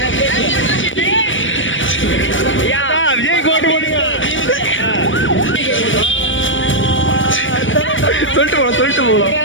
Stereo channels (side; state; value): right; late; 0.56 ms